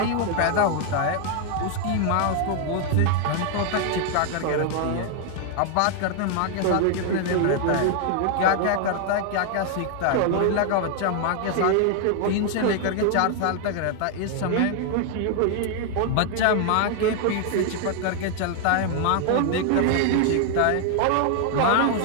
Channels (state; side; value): different; both; correlation 0.00